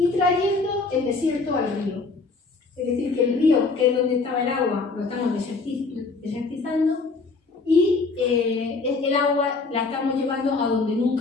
trayendo el desierto al río. Es decir, que el río, que es donde estaba el agua, lo estamos desertizando y el agua la estamos llevando a donde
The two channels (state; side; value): quieter; right; 4.0 dB